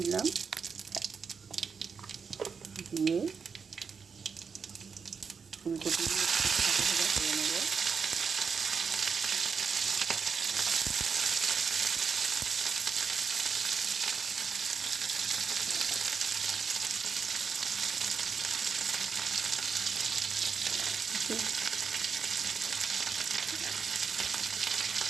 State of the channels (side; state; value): left; quieter; 5.8 dB